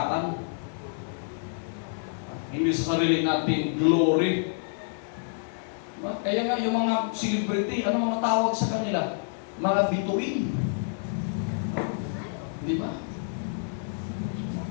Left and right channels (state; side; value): silent; right; 59 dB below the other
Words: hindi sa sarili nating glory. Kaya nga yung mga celebrity, ano mga tawag sa kanila? Mga bituin. Di ba?